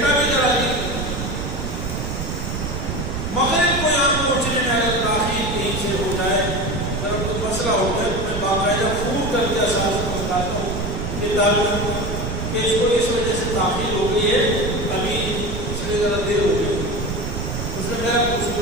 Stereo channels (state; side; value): noise; right; rumble, 4 dB below the sound